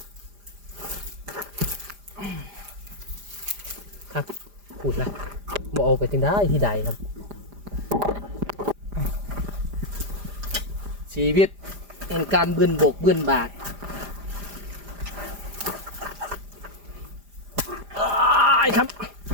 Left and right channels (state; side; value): late; left; 5.0 ms